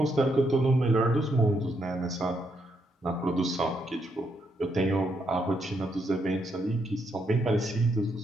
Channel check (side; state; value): both; normal; correlation 0.77